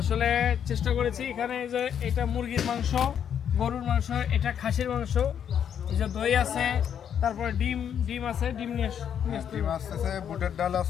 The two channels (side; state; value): right; quieter; 8.6 dB